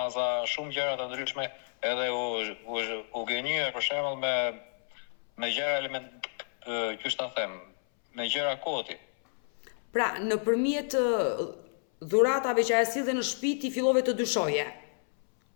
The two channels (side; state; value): right; silent; 58 dB below the other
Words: shumë gjëra të ndryshme, edhe u gënjye për shembull me gjëra element, qysh ta them, me gjëra koti. Pra, nëpërmjet dhuratave që ajo sillte në shtëpi ti fillove të dyshoje.